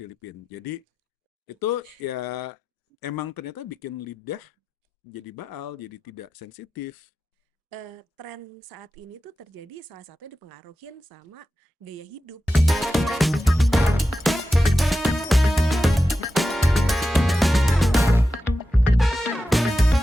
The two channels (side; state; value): both; normal; correlation 0.92